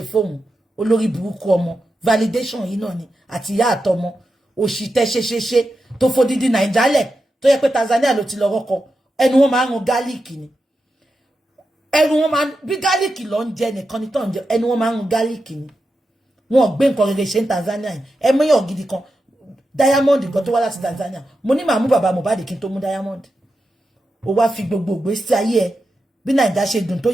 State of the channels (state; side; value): normal; both; correlation 0.89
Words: fóun olórí burúkú ọmọ validation yìí náà ni àti ìyá àtọmọ òṣì tẹ́ ṣe tó fodidi Naijale tó yẹ pé Tanzania ló ti lọ rọkọ ẹnu wọn máa ń run garlic ni ẹnu wọn máa bí garlic ló ń jẹ nìkan ni tó ń jẹ ẹnu wọn máa ń run garlic ni wọn gbé nǹkan rere ṣe ní Tanzania ẹ mẹyàn gidi kan Diamond gan tó wá láti Tanzania mo ní màá mú bàbá Mohbad kí n tó mú Diamond ó wá fi gbogbo ìgbésí ayé ẹ bí Naija ṣe dùn tó